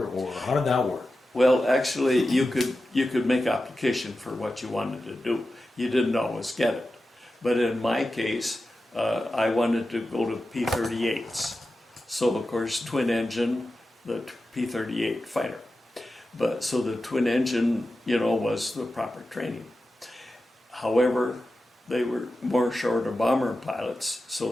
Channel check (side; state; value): both; normal; correlation 0.92